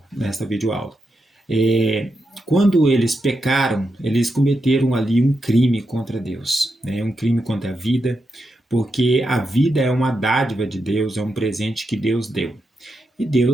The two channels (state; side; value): normal; both; correlation 0.86